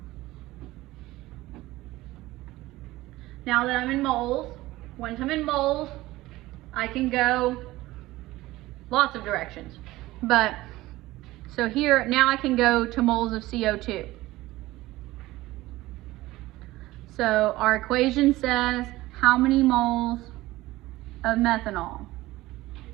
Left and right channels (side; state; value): left; quieter; 17.9 dB